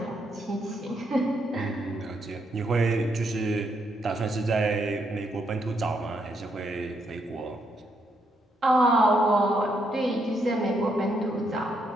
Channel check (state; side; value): normal; both; correlation 0.76